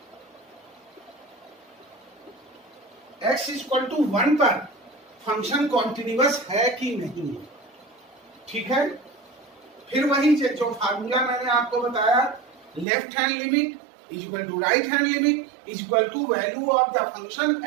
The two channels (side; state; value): left; drops out; at 12.9 s